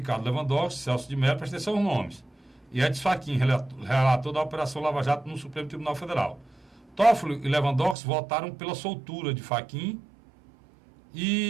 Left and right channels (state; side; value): drops out; left; at 8.0 s